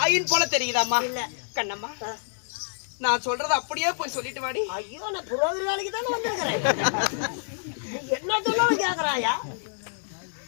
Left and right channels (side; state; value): right; silent; digital silence